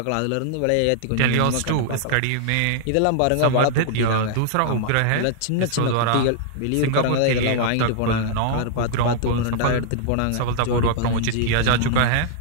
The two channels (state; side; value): different; both; correlation -0.01